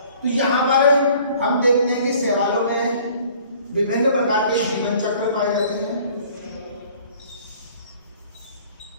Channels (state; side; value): inverted; both; correlation -0.54